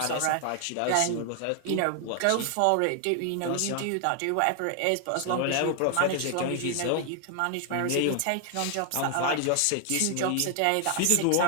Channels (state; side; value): different; both; correlation 0.00